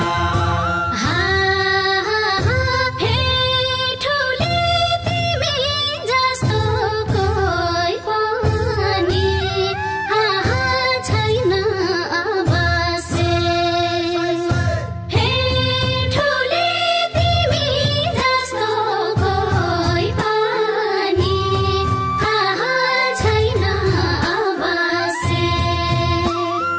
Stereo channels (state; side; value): identical; both; correlation 1.00